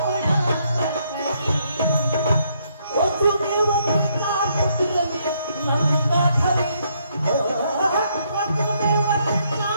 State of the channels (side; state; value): both; inverted; correlation -0.72